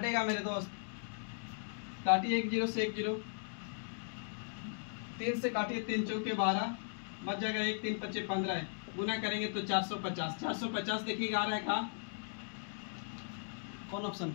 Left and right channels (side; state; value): right; silent; digital silence